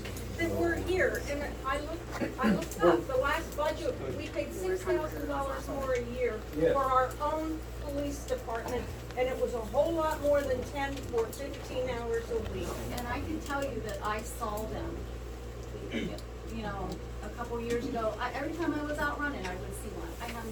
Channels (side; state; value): both; identical; correlation 1.00